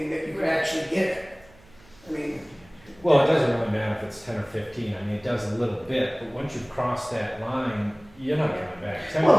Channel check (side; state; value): right; noise; hum, 26 dB below the sound